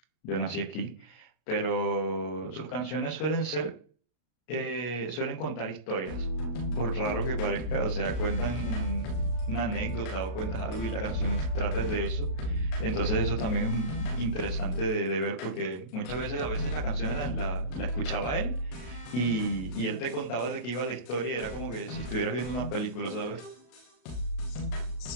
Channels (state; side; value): late; right; 32 ms